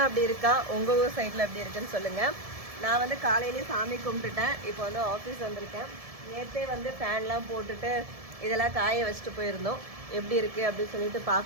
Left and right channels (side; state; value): left; late; 1.7 ms